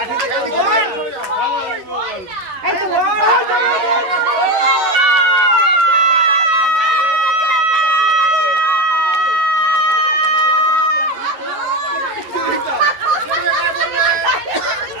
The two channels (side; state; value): left; late; 11 ms